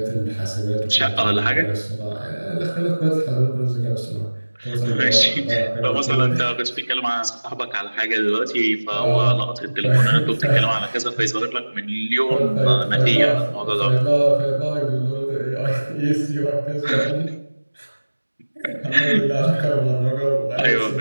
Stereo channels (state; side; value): inverted; both; correlation -1.00